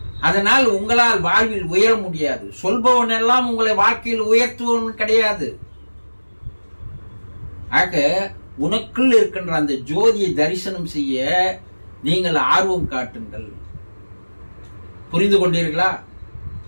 அதனால் உங்களால் வாழ்வில் உயர முடியாது. சொல்பவன் எல்லாம் உங்களை வாழ்க்கையில் உயர்த்துவன் கிடையாது. ஆக உனக்குள் இருக்கின்ற அந்த ஜோதியை தரிசனம் செய்ய நீங்கள் ஆர்வம் காட்டுங்கள். புரிந்து கொண்டீர்களா?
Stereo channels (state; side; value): inverted; both; correlation -1.00